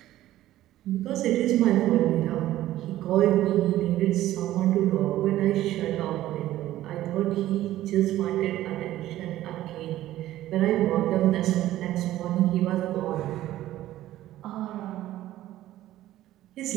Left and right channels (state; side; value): quieter; left; 14.3 dB